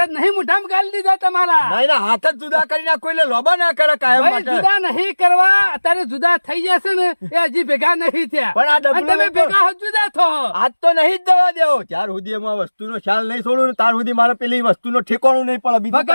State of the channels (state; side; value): inverted; both; correlation -1.00